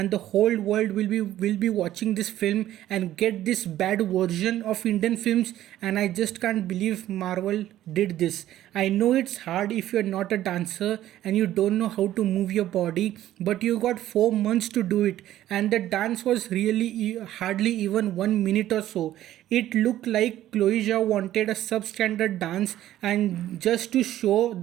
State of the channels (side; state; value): left; quieter; 13.2 dB